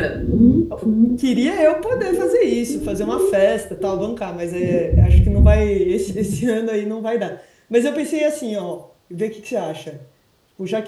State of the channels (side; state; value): both; identical; correlation 1.00